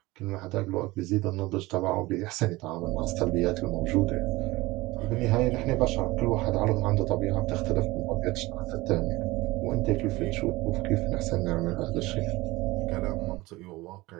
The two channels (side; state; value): left; quieter; 20.4 dB